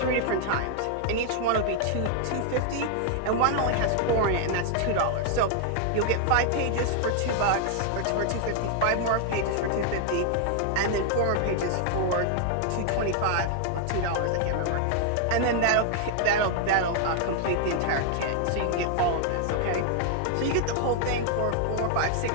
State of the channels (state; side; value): different; both; correlation 0.00